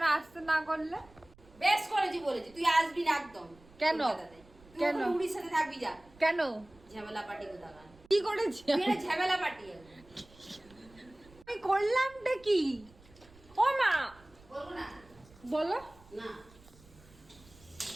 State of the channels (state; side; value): noise; right; rumble, 25 dB below the sound